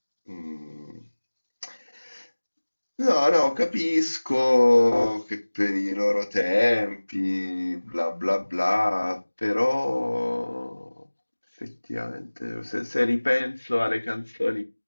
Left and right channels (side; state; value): both; inverted; correlation -1.00